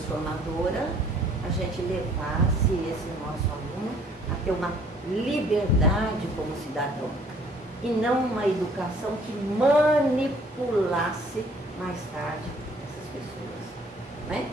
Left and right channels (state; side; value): normal; both; correlation 0.58